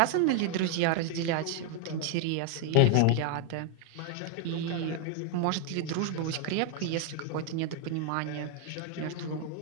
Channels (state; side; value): different; both; correlation 0.00